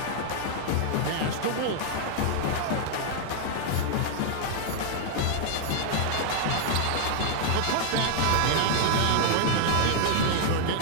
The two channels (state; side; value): different; both; correlation -0.01